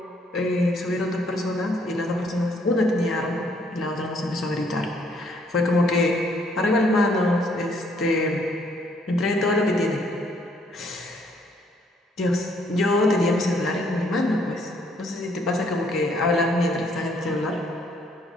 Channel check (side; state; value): both; normal; correlation 0.67